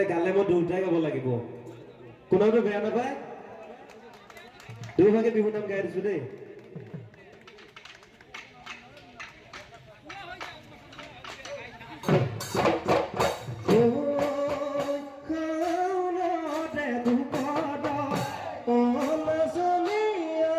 গালে মই দুয়োটাই গাব লাগিব, কোনোটো বেয়া নাপায়, দুয়োভাগে বিহু নাম গাই দিছোঁ দেই।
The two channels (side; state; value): both; identical; correlation 1.00